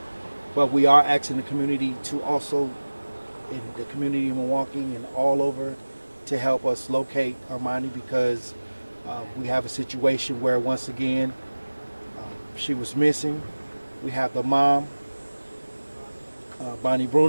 but we are asking the community to also, in the community in Milwaukee and all over, to help us locate Armoni because we have a situation where once again she was missing. We have the mom, Bonnie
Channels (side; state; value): both; inverted; correlation -1.00